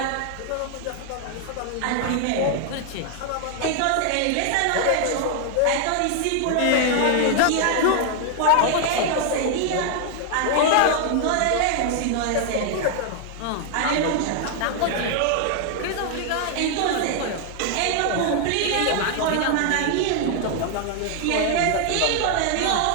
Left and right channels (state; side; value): different; both; correlation 0.00